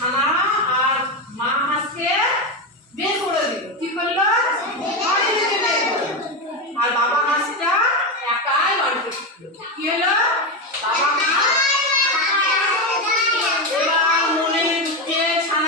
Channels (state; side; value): normal; both; correlation 0.13